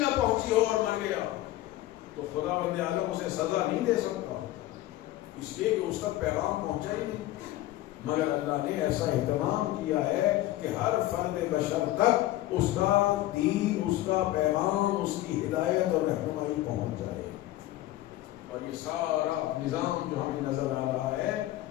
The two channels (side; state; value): right; quieter; 15.8 dB